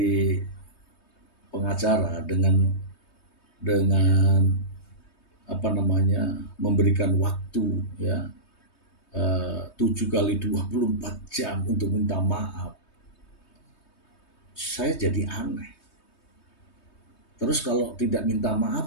pengacara dengan memberikan waktu ya 7 kali 24 jam untuk minta maaf, saya jadi aneh. Terus kalau tidak minta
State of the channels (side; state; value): right; late; 3.2 ms